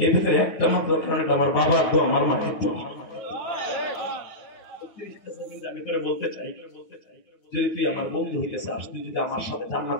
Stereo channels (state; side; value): late; right; 9.3 ms